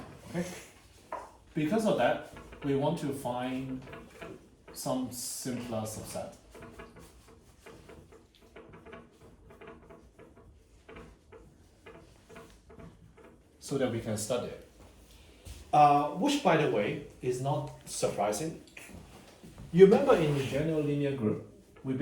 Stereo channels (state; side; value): identical; both; correlation 1.00